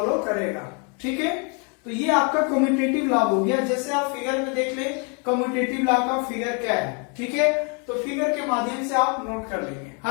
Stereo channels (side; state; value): right; quieter; 36.3 dB